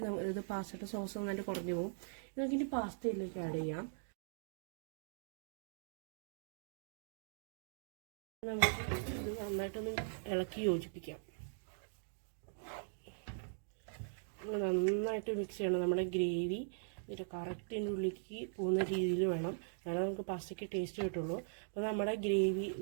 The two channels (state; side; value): silent; left; digital silence